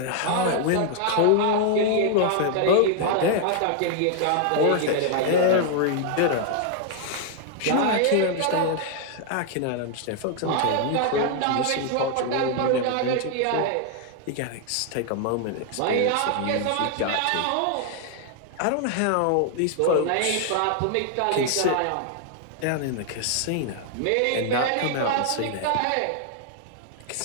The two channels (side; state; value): both; different; correlation 0.00